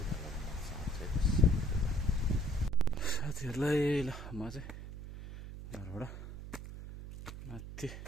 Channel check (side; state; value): right; noise; hum, 11 dB below the sound